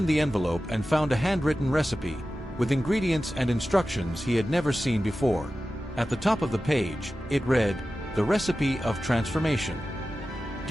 the envelope and found a handwritten recipe, with ingredients and instructions he had never seen before. At the top of the page, it read, "The Recipe of Transformation."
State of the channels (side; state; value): both; normal; correlation 0.94